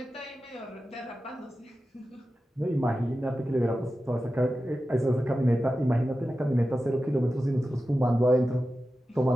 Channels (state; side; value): normal; both; correlation 0.93